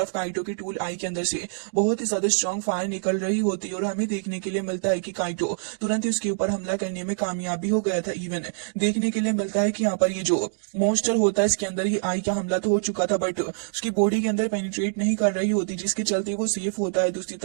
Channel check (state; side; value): silent; left; digital silence